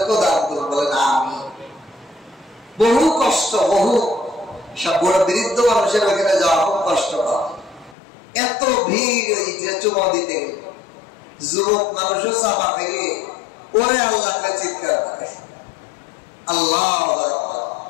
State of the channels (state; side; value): drops out; right; at 8.0 s